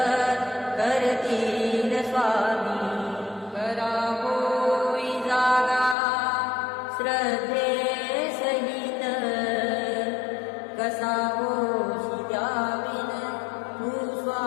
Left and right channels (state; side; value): drops out; right; at 6.0 s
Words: करतील स्वामी। करावोई जागा श्रद्धे सहित, कसा होशी द्याविन तू